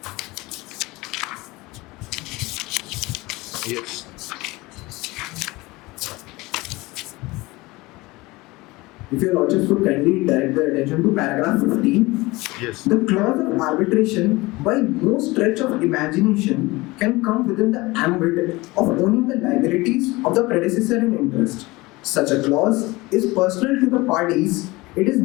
Yes. If Your Lordships would kindly direct the attention to paragraph 15. Yes. The clause of arbitration, by no stretch of imagination, can come within the ambit of owning the liabilities of the predecessor in interest. Such a clause is personal to the parties. It is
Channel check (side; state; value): right; quieter; 21.7 dB